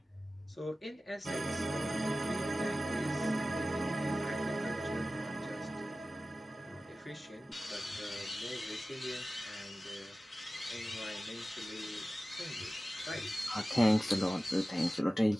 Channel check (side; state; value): both; normal; correlation 0.96